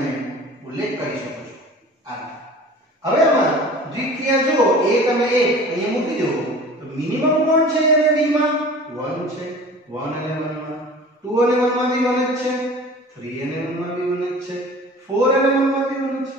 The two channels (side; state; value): both; normal; correlation 0.42